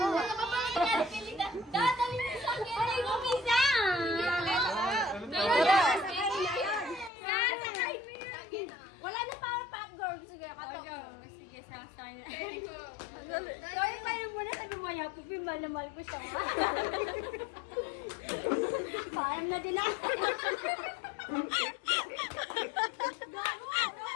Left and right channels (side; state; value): right; drops out; at 7.1 s